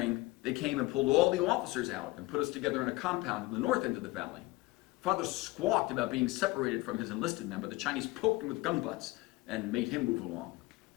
they came and pulled all the officers out and put us together in a compound in the north end of the valley. Father squawked about being separated from his enlisted men, but the Chinese poked him with gun butts and made him move along.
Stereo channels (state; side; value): quieter; right; 20.8 dB